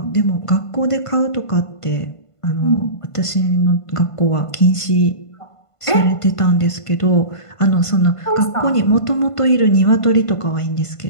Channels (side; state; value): right; late; 1.5 ms